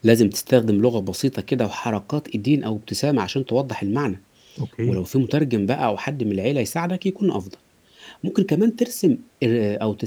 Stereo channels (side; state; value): both; identical; correlation 1.00